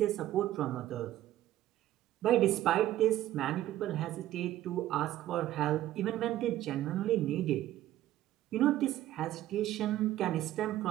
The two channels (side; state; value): left; quieter; 13.8 dB